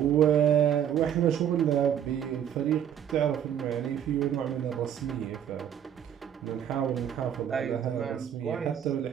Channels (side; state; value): left; quieter; 9.5 dB